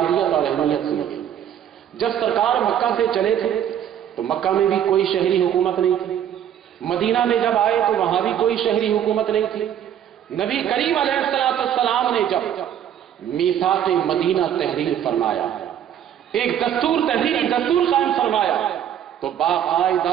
اور اہمیت سنیے۔ جب سرکار مکہ سے چلے تھے تو مکہ میں بھی کوئی شہری حکومت نہیں تھی، مدینہ میں جب آئے تو وہاں بھی کوئی شہری حکومت نہیں تھی۔ نبی کریم علیہ السلام نے جب میثاق مدینہ تحریر فرمایا، ایک تحریری دستور قائم فرمایا، تو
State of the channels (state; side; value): quieter; left; 9.9 dB